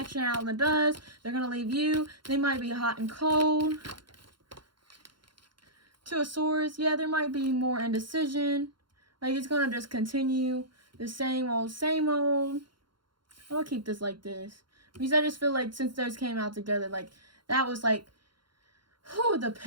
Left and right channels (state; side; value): late; left; 0.72 ms